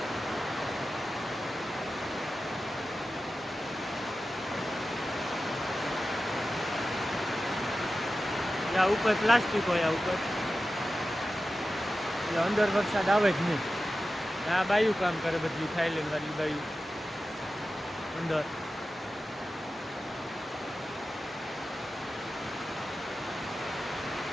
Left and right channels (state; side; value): normal; both; correlation 0.93